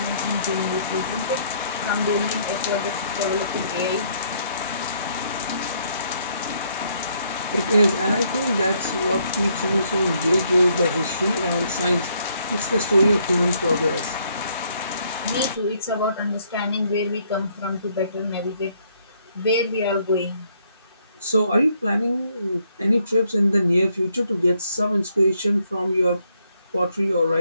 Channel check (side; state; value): both; inverted; correlation -0.70